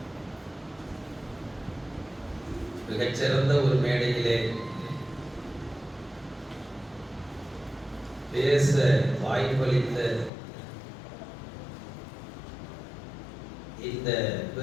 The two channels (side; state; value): right; drops out; at 10.3 s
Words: மிகச்சிறந்த ஒரு மேடையிலே பேச வாய்ப்பளித்த இந்த